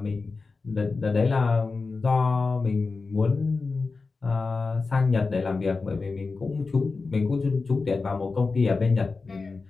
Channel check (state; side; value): quieter; right; 4.1 dB